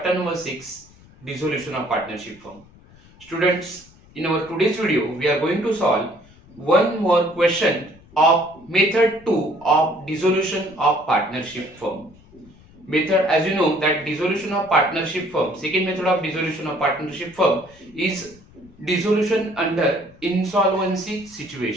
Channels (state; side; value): noise; left; rumble, 25 dB below the sound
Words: number 6, Dissolution of Partnership Firm. Students, in our today's video, we are going to solve one more question of method 2 of dissolution of partnership firm. Method, as you know, that dissolution of partnership firm, second method of dissolution of partnership firm is dissolution under insolvency